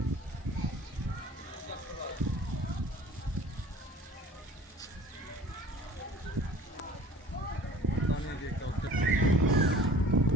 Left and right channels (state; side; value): normal; both; correlation 0.47